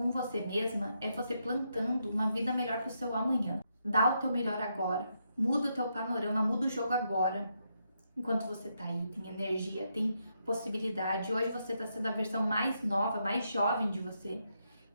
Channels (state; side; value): inverted; both; correlation -0.80